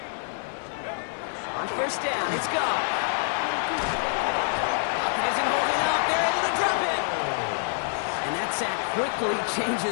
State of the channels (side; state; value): right; silent; 60 dB below the other